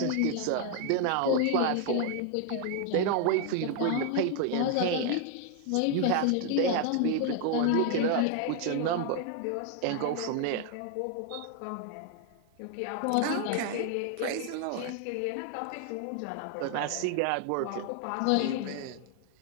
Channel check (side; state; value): both; different; correlation 0.00